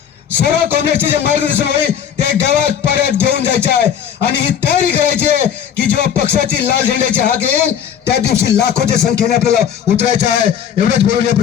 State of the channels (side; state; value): right; quieter; 8.7 dB